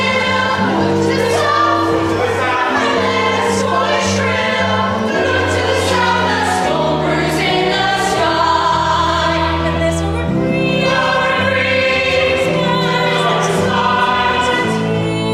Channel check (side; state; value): both; identical; correlation 1.00